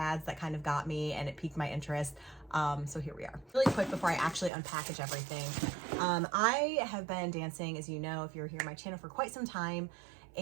that kind of got me and it piqued my interest. So here we are. Really quick before I actually unpackage everything. I have been dancing, as you know, if you're here on my channel, for quite some time.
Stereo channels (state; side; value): drops out; left; at 4.5 s